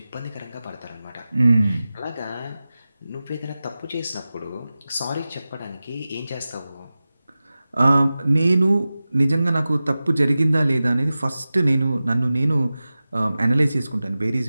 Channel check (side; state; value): both; inverted; correlation -0.96